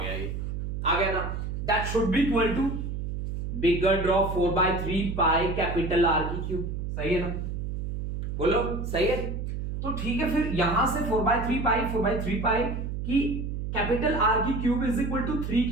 ये आ गया ना। That should be equal to bigger drop 4/3 pi capital R की क्यूब, सही है ना, बोलो सही है। तो ठीक है, फिर यहां से 4/3 पाई की कैपिटल आर की क्यूब इज इक्वल टू 3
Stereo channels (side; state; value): right; noise; hum, 4 dB below the sound